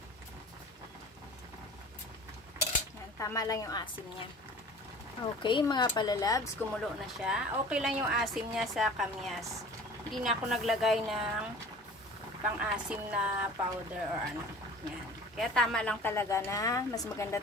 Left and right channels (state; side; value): normal; both; correlation 0.43